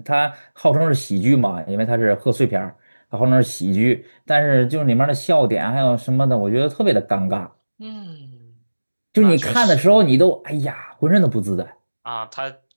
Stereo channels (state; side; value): inverted; both; correlation -1.00